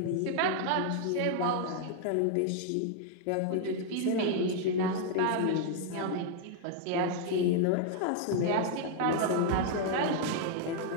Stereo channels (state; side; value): different; both; correlation 0.00